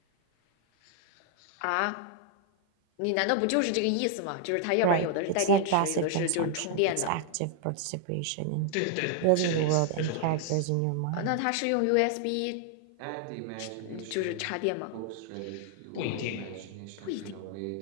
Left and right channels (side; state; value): both; different; correlation 0.00